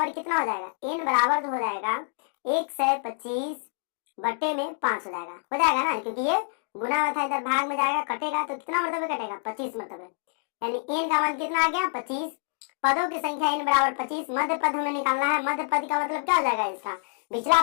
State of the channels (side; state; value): right; silent; digital silence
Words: कितना हो जाएगा, एन बराबर तो हो जाएगा 125 बटे में 5 हो जाएगा ना, क्योंकि ये गुना में था, इधर भाग में जाएगा, कटेगा तो कितना मरतबे कटेगा 25 मरतबे, यानी एन का मान कितना आ गया 25। पदों की संख्या n बराबर 25। मध्य पद हमें निकालना है। मध्य पद का मतलब क्या हो जाएगा इसका, पिछला